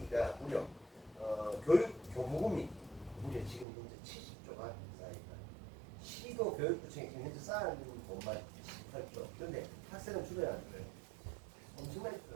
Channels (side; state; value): left; drops out; at 3.7 s